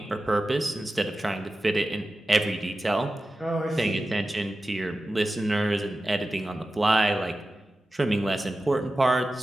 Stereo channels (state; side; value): normal; both; correlation 0.94